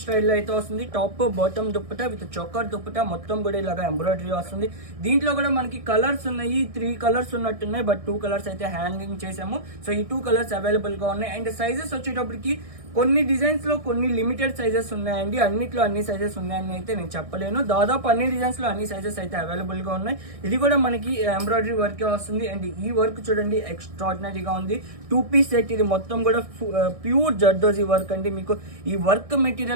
స్టైల్లో అయితే వస్తుంది. Top bottom dupatta with చొక్కర్ dupatta మొత్తం కూడా ఇలాగా ఎంబ్రాయిడరీ వస్తుంది. దీంట్లో కూడా మనకి కలర్స్ ఉన్నాయి, 3 కలర్స్ ఉన్నట్టున్నాయి. బట్ 2 కలర్స్ అయితే హ్యాంగింగ్ చేసాము. సో ఈ 2 కలర్స్ అవైలబుల్ గా ఉన్నాయి. అండ్ సైజెస్ వచ్చేటప్పటికి కొన్ని డిజైన్స్ లో కొన్ని లిమిటెడ్ సైజెస్ ఉన్నాయండి. అన్నిట్లో అన్ని సైజెస్ ఉన్నాయని అయితే నేను చెప్పలేను. దాదాపు అన్ని డిజైన్స్ లో అన్ని సైజెస్ అయితే అవైలబుల్ గా ఉన్నాయి. ఇది కూడా మనకి ఎంబ్రాయిడరీ వర్కే వస్తుంది. అండ్ ఈ వర్క్ చూడండి ఎక్స్ట్రాడినరీగా ఉంది. 2 పీస్ సెట్, ఇది మొత్తం కూడా ప్యూర్ జర్దోజీ వర్క్ అండి. మీకు ఈ వర్క్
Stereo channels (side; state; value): left; late; 1.6 ms